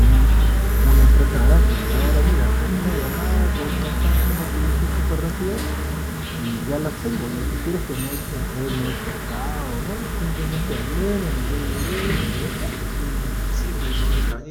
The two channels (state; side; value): identical; both; correlation 1.00